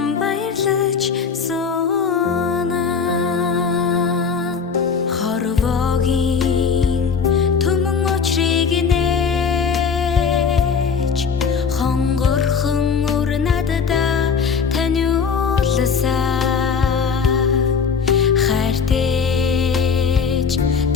баярлаж суна хорвогийн түмэн очрыг нээж хонгорхон өр надада таниулсан хайртэж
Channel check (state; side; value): quieter; right; 5.9 dB